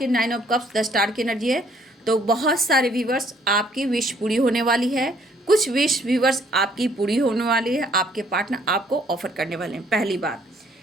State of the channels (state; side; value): normal; both; correlation 0.63